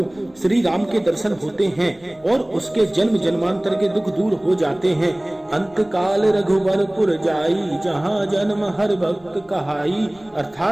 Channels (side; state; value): left; noise; rumble, 29 dB below the sound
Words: श्री राम के दर्शन होते हैं और उसके जन्म जन्मांतर के दुख दूर हो जाते हैं। अंत काल रघुवरपुर जाई, जहाँ जन्म हर भक्त कहाई।